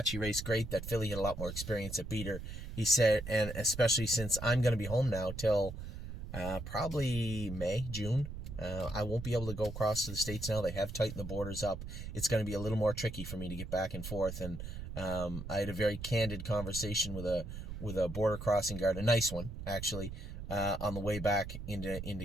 she raced great. That filly had a lot more experience at beat her. He said, and especially since I'm going to be home now till probably May, June. I won't be able to go across to the States now. They have tightened the borders up. It's going to be a little more tricky for me to get back and forth. And I had a very candid conversation with a border crossing guard, a nice one actually, on the way back into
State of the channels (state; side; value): noise; right; rumble, 8 dB below the sound